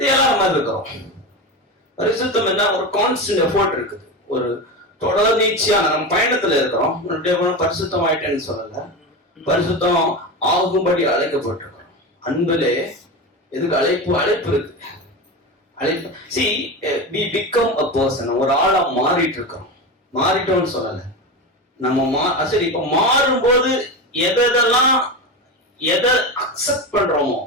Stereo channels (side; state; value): both; normal; correlation 0.21